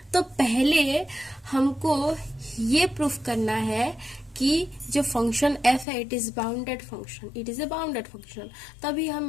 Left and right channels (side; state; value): right; drops out; at 5.9 s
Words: तो पहले हमको ये प्रूफ करना है कि जो फंक्शन f है it is bounded function, it is a bounded function. तभी